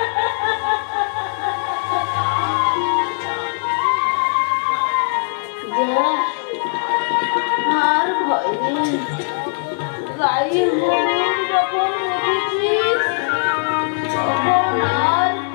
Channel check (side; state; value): right; silent; 66 dB below the other